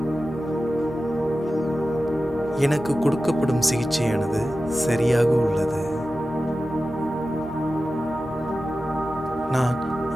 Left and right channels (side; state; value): both; normal; correlation 0.94